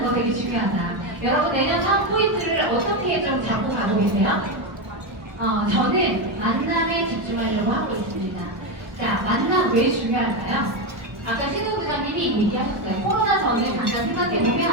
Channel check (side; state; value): left; late; 1.0 ms